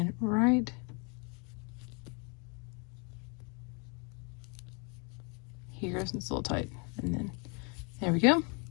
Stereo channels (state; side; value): quieter; right; 34.2 dB